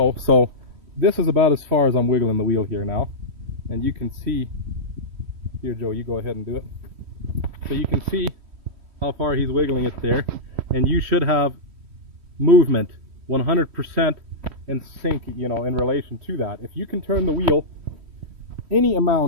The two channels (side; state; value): left; late; 3.1 ms